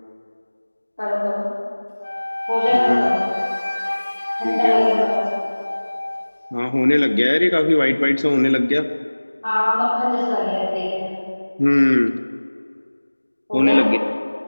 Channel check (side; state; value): both; inverted; correlation -1.00